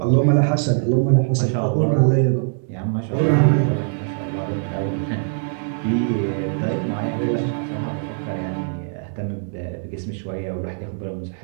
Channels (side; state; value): left; silent; 64 dB below the other